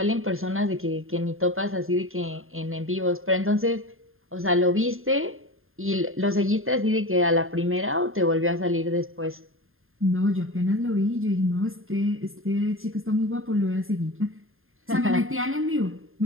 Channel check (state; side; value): late; left; 0.60 ms